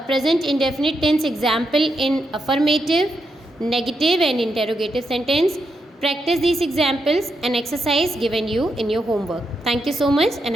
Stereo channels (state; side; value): normal; both; correlation 0.83